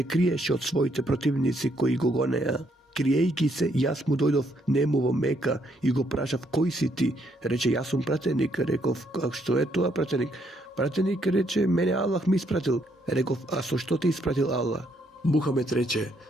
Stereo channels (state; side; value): normal; both; correlation 0.72